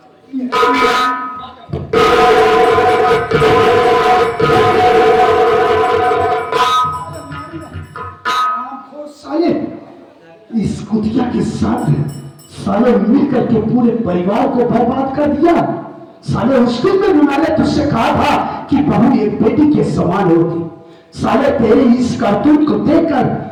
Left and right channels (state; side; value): identical; both; correlation 1.00